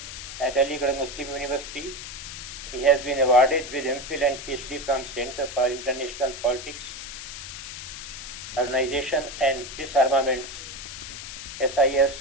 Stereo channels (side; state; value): left; noise; hiss, 10 dB below the sound